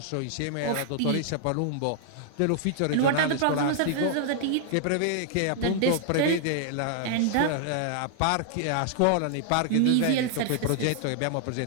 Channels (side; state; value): both; different; correlation 0.00